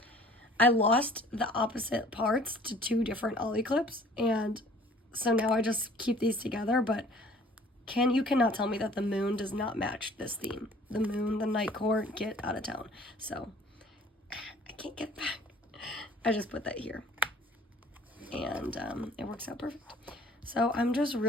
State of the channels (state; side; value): normal; both; correlation 0.52